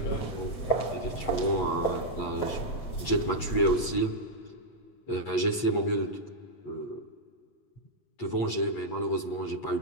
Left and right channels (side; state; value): right; late; 8.3 ms